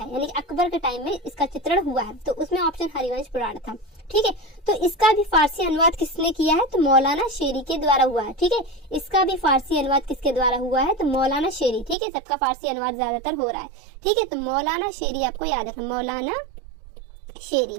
यानी कि अकबर के टाइम में इसका चित्रण हुआ है। तो उसमें ऑप्शन हरिवंश पुराण था। ठीक है, तो इसका भी फारसी अनुवाद किसने किया है, तो मौलाना शेरी के द्वारा हुआ है। ठीक है, इसका भी फारसी अनुवाद किसके द्वारा हुआ है, तो मौलाना शेरी। ठीक है, सबका फारसी अनुवाद ज्यादातर हो रहा है। ठीक है, तो मौलाना शेरी आपको याद रखना, मौलाना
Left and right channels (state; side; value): drops out; left; at 12.0 s